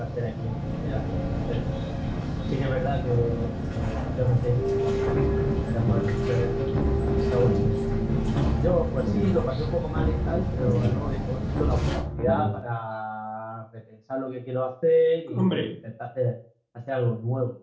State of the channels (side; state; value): both; identical; correlation 1.00